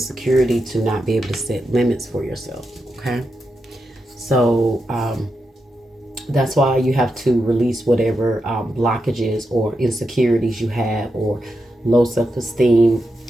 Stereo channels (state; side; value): normal; both; correlation 0.87